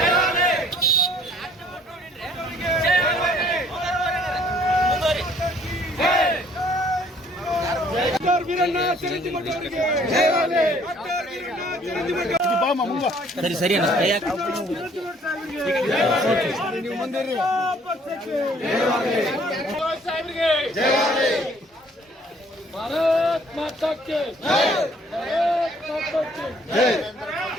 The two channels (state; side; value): normal; both; correlation 0.60